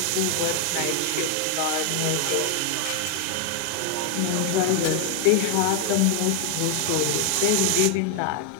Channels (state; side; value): different; both; correlation 0.01